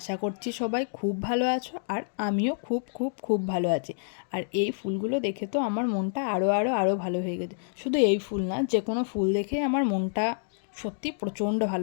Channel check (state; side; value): silent; right; digital silence